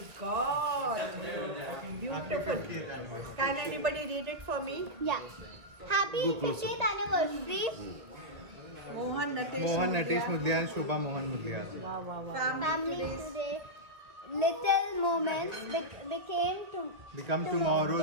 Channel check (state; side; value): late; left; 1.5 ms